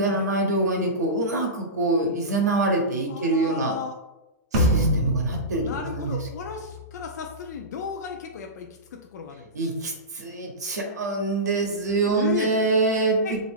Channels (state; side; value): normal; both; correlation -0.18